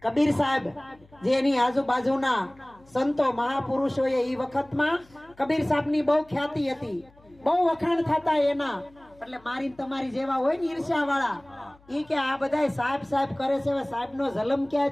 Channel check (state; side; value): noise; left; hum, 29 dB below the sound